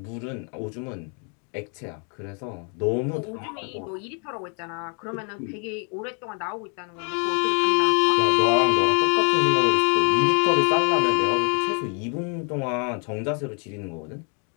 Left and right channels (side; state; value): right; quieter; 38.6 dB